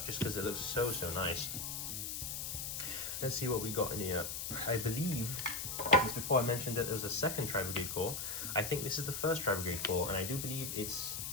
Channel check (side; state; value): left; noise; hiss, 4 dB below the sound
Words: just because it looks so, so nice. Let's see what we got in here. I believe, just before I mentioned that there was a second Tri-Brigade core, I think this is the first Tri-Brigade core, and I do believe it's